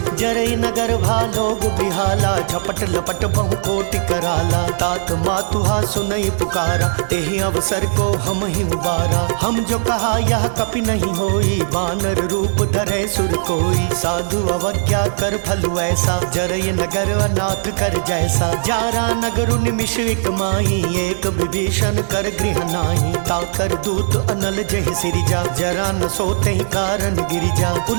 जरई नगर भालोग बिहाला, झपट लपट बहु कोटि कराला। तात मातुहा सुनई पुकारा, तेहि अवसर को हम ही उबारा। हम जो कहा यह कपि नहीं होई, बानर रूप धरे सुर कोई। साधु अवज्ञा कर फल ऐसा, जरई नगर अनाथ कर जैसा। जारा नगरु निमिष एक माही, एक विभीषण कर गृह नाही। ताकर दूत अनल जहि सिरिजा, जरा न सोते ही कारण गिरिजा।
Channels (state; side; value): silent; left; digital silence